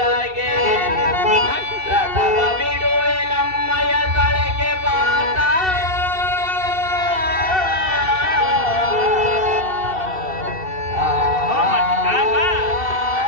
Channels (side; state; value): left; late; 2.7 ms